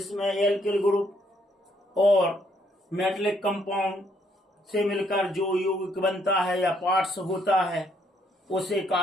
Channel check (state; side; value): normal; both; correlation 0.70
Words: एल्किल ग्रुप और मेटलिक कंपाउंड से मिलकर जो यौगिक बनता है या पार्ट्स होता है, उसे